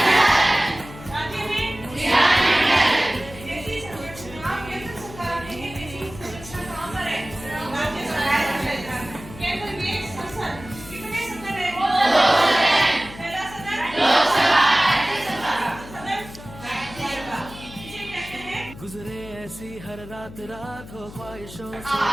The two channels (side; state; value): left; noise; hum, 16 dB below the sound